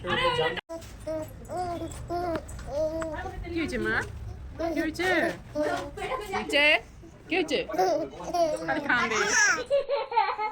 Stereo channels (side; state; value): both; identical; correlation 1.00